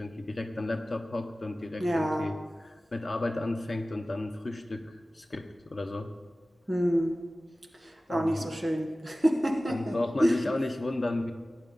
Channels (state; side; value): normal; both; correlation 0.97